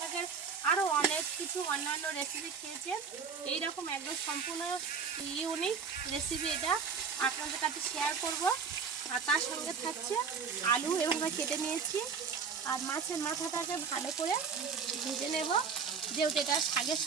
আরও অনেক কিছু অন্যান্য রেসিপি খেয়েছেন। এইরকম একদম সম্পূর্ণ ইউনিক রেসিপি এটা। আপনাদের কাছে শেয়ার করব। আর তার সঙ্গে থাকছে আলু এভাবে কেটে নিয়েছি, আর মাছের মাথাটাকে ভালো করে ভেজে নেব, যেহেতু এটা শাকের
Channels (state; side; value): quieter; left; 5.8 dB